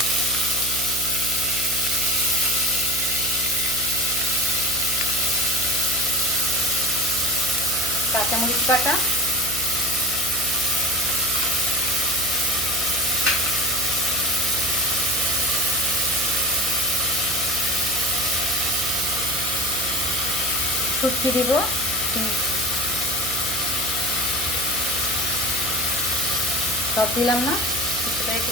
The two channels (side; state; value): right; noise; hum, 10 dB below the sound